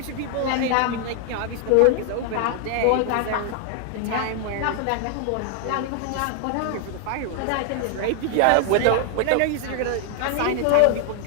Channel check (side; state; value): both; different; correlation 0.00